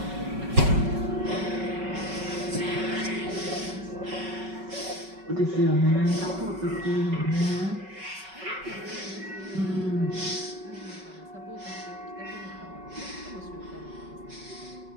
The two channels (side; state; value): left; late; 5.3 ms